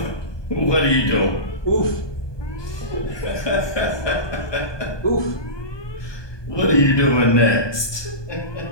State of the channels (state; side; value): late; right; 1.2 ms